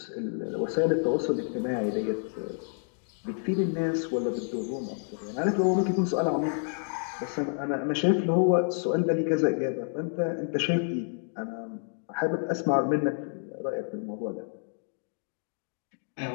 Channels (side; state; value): right; silent; 58 dB below the other